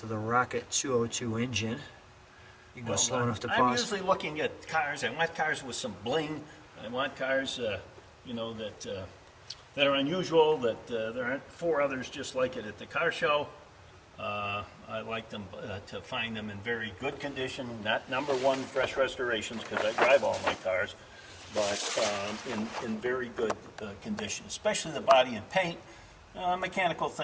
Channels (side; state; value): both; identical; correlation 1.00